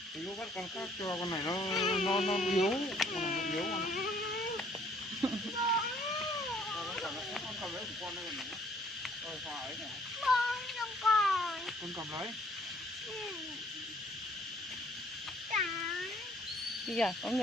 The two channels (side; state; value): both; normal; correlation 0.61